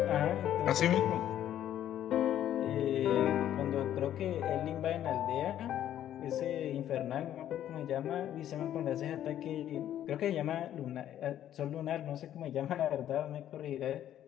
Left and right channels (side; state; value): right; quieter; 11.3 dB